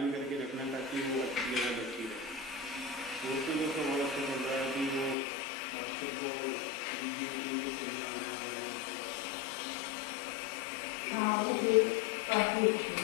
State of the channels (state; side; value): drops out; right; at 5.2 s